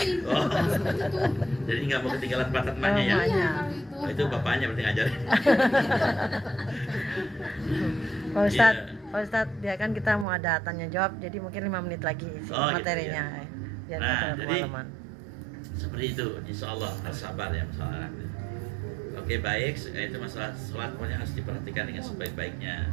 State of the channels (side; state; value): left; drops out; at 10.2 s